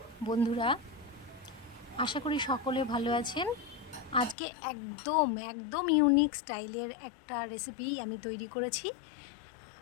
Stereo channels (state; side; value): drops out; right; at 4.4 s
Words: বন্ধুরা, আশা করি সকলে ভালো আছেন। আজকে একদম ইউনিক স্টাইলের একটা রেসিপি আমি তৈরি করেছি।